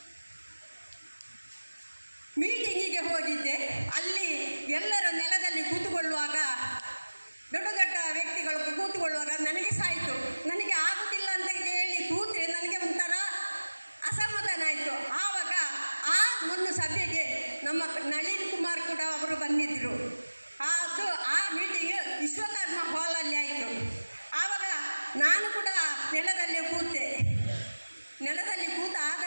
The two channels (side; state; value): both; inverted; correlation -1.00